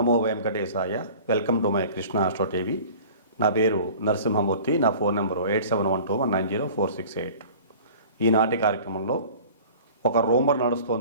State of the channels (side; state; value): both; inverted; correlation -0.44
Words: వెంకటేశాయ. Welcome to my Krishna astro TV. నా పేరు నరసింహమూర్తి. నా ఫోన్ నెంబరు 8712190468. ఈనాటి కార్యక్రమంలో ఒక రూమర్